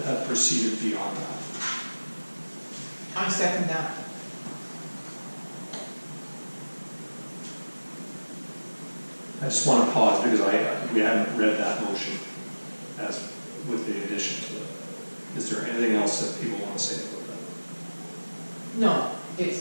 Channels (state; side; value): inverted; both; correlation -1.00